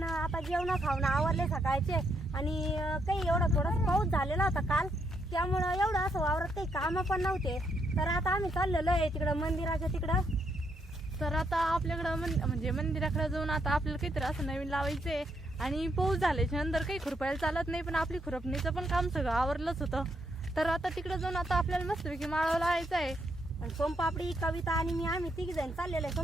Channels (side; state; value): both; normal; correlation 0.76